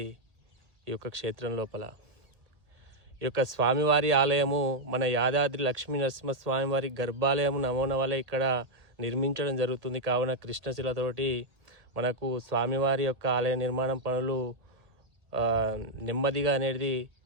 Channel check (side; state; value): left; late; 1.8 ms